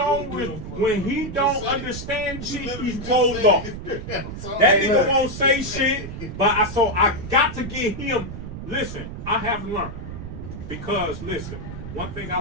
don't understand shit, he's closed off. That nigga won't say shit, but I got to get him. Listen, I have learned, because listen, one thing I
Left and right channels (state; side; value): noise; right; rumble, 9 dB below the sound